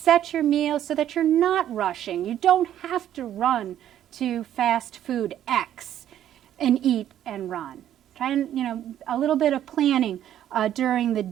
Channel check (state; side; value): quieter; left; 11.2 dB